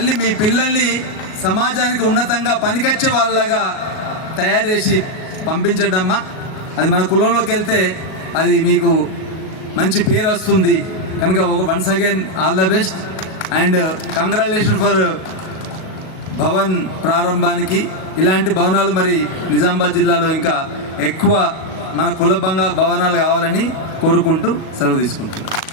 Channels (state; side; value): late; right; 37 ms